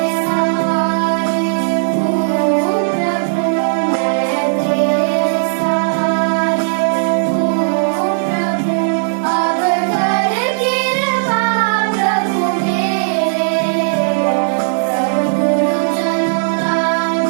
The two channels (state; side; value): silent; left; digital silence